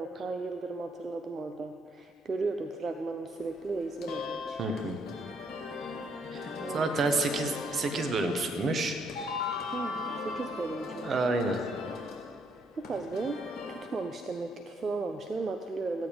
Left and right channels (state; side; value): normal; both; correlation 0.71